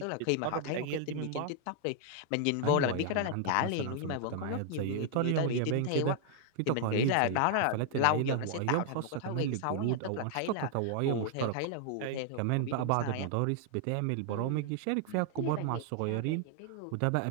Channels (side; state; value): both; different; correlation 0.00